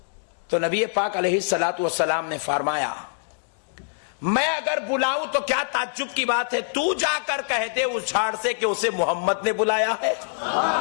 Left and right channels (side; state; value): right; silent; 62 dB below the other